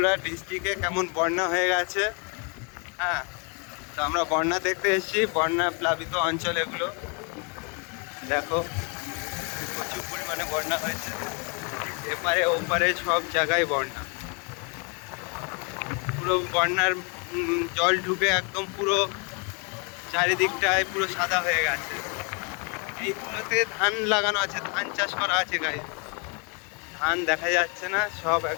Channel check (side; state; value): right; quieter; 34.9 dB